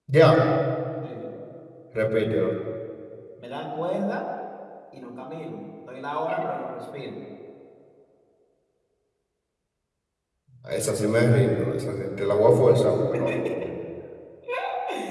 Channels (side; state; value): both; identical; correlation 1.00